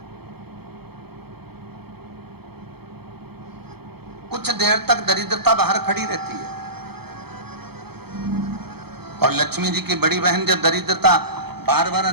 कुछ देर तक दरिद्रता बाहर खड़ी रहती है और लक्ष्मी जी की बड़ी बहन जब दरिद्रता बार बार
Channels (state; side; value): late; left; 0.97 ms